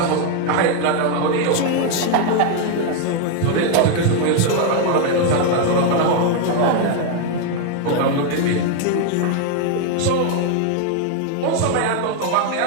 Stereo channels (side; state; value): both; different; correlation 0.01